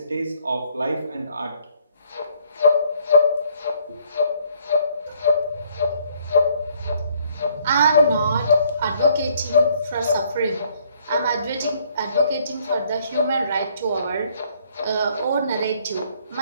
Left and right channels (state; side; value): inverted; both; correlation -0.65